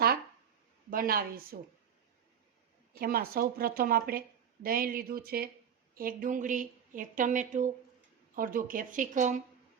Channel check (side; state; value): left; quieter; 8.0 dB